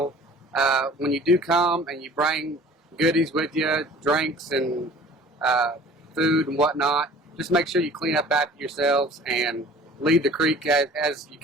When you do come and you bring goodies with you, drinks and food and whatnot, just make sure you clean up after yourselves and leave the creek as you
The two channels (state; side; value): normal; both; correlation 0.47